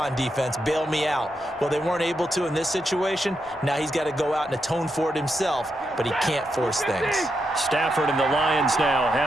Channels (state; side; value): normal; both; correlation 0.83